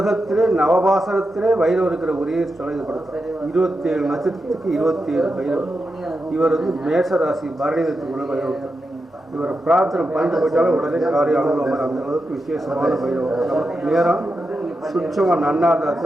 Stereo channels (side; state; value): both; normal; correlation 0.88